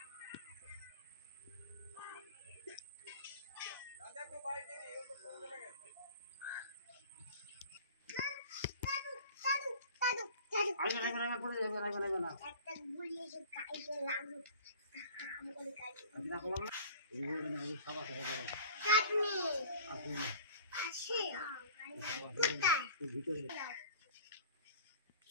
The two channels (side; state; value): both; inverted; correlation -0.44